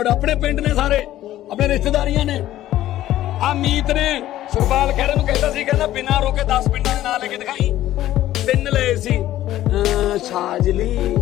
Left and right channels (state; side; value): quieter; right; 13.8 dB